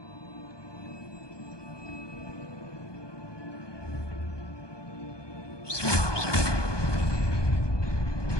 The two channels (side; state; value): right; late; 1.2 ms